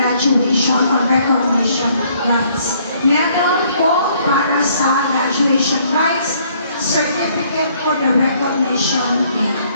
or recognition rites. Medal po para sa graduation rites, certificate for the recognition day.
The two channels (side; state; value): both; inverted; correlation -0.64